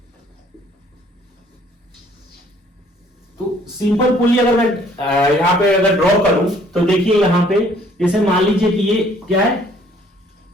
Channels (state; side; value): normal; both; correlation 0.60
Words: तो सिंपल पुली अगर मैं यहां पे अगर ड्रॉ करूं तो देखिए यहां पे जैसे मान लीजिए कि ये क्या है,